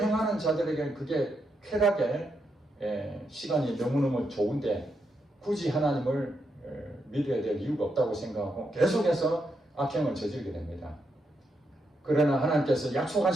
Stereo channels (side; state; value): both; normal; correlation 0.82